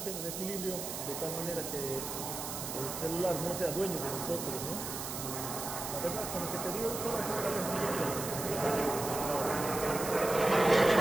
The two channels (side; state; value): right; noise; hiss, 6 dB below the sound